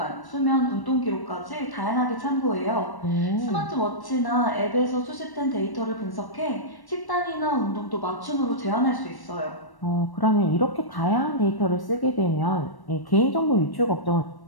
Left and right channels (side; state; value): right; late; 1.1 ms